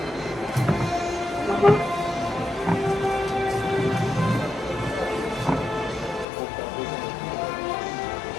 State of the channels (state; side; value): drops out; right; at 6.2 s